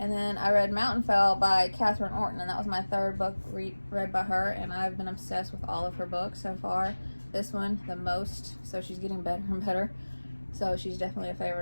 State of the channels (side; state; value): both; inverted; correlation -1.00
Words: then I read Mountainfell by Catherine Orton, and that was my 3rd book read by her, and I've been obsessed with all of her books so far. This one, the most, so she's getting better and better. So she's definitely a